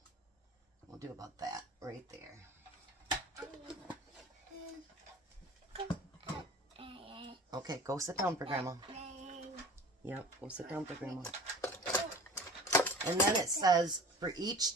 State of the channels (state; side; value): normal; both; correlation 0.41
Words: We'll do about that right there. Okay, go sit down for Grandma. Yep, go sit down for Grandma. And then it says for each